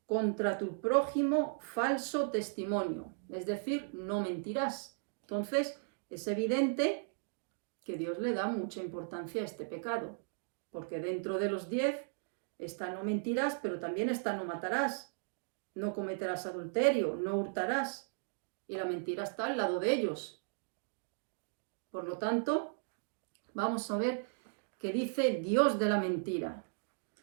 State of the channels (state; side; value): silent; left; digital silence